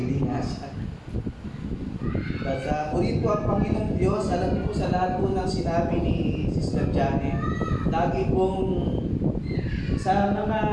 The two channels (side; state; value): both; identical; correlation 1.00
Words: nga siya. At purihin po ang Panginoong Diyos. Alam niyo po sa lahat po ng sinabi ni Sister Janet, lagi pong sa mga